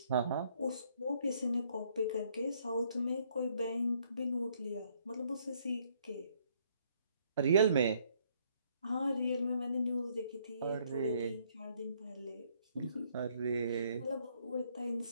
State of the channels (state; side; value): inverted; both; correlation -0.67